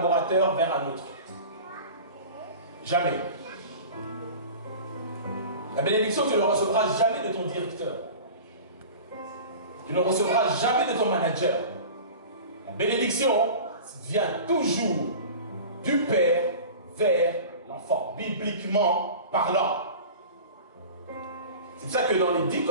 vers un autre. Jamais. La bénédiction, tu ne la recevras jamais de ton directeur. Tu ne recevras jamais de ton manager. La bénédiction vient toujours du Père vers l'enfant, bibliquement parlant. C'est pour ça que dans les 10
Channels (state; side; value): inverted; both; correlation -0.37